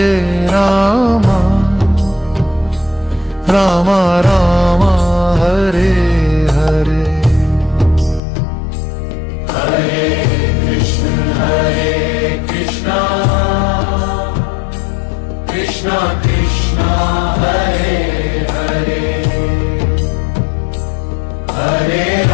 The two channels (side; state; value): right; drops out; at 8.2 s